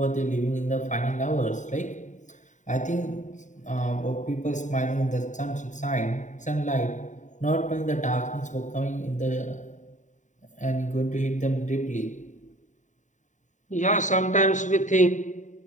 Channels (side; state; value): right; late; 0.36 ms